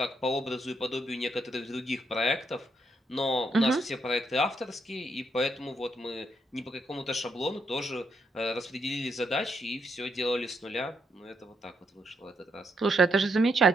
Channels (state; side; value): normal; both; correlation 0.78